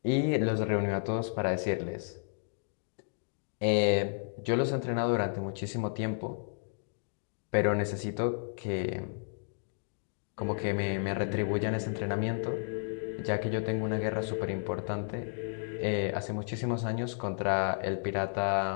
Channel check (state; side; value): silent; right; digital silence